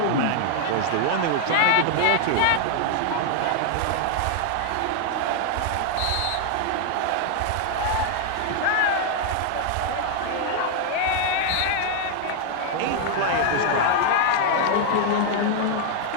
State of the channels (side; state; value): both; different; correlation 0.00